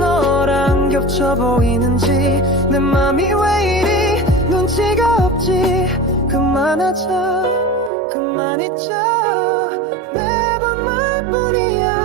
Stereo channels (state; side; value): drops out; left; at 7.9 s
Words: 겹쳐 보이는지 내 맘이 왜 이리 눈치가 없지. 그만하자 그만 잊자 매번